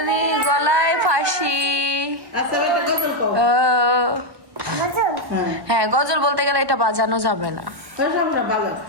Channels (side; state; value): left; late; 1.1 ms